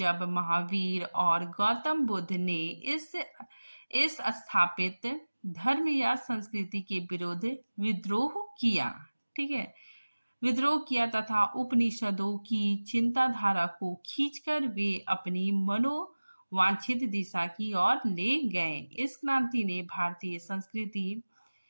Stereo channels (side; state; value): both; inverted; correlation -1.00